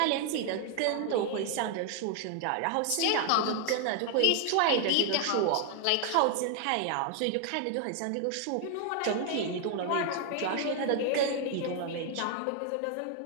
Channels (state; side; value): different; both; correlation 0.00